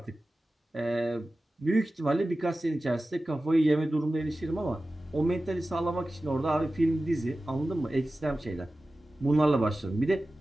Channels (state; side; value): normal; both; correlation 0.95